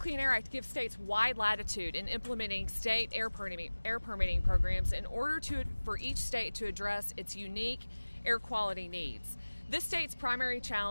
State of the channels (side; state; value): both; inverted; correlation -1.00